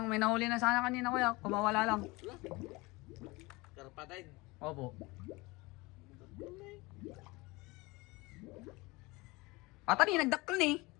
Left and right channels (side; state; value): right; quieter; 23.5 dB